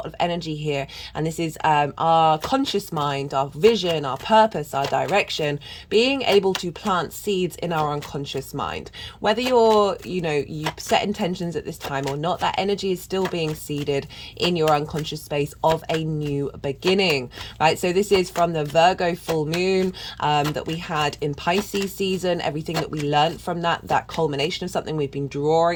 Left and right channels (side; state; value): both; identical; correlation 1.00